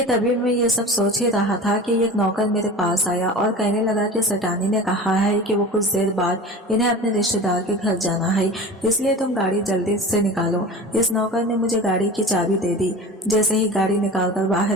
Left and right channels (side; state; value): both; normal; correlation 0.35